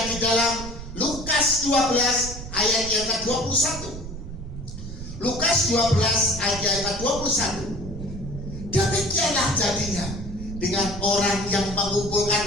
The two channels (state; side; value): noise; right; rumble, 10 dB below the sound